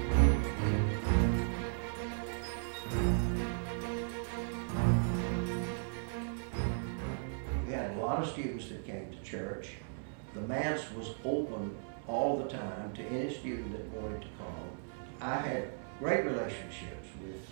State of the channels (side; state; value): left; silent; 53 dB below the other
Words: We had a lot of students that came to church. The Manse was open all the time to any student that wanted to come. I had great relationships with